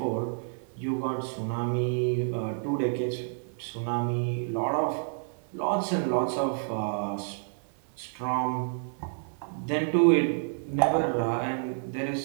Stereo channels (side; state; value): left; silent; 56 dB below the other